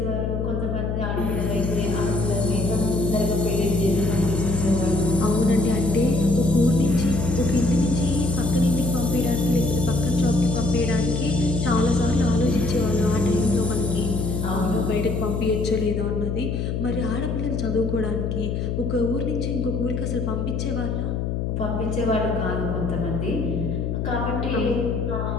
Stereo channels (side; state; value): left; noise; hum, 1 dB below the sound